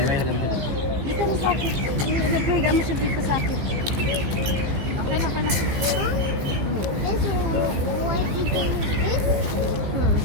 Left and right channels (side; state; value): left; late; 15 ms